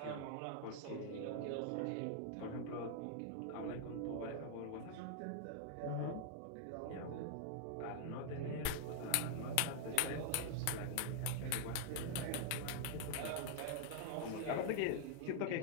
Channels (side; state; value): both; different; correlation 0.00